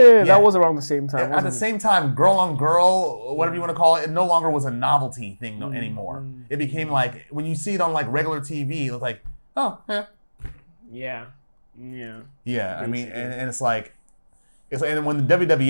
that was around the same time. At the same time, girl on girl, whatever you want to call it, it no longer was a novelty thing anymore. It became like when you see it on like regular TV, it's like, oh yeah. Yeah. I mean, and it's like. And when the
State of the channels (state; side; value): inverted; both; correlation -1.00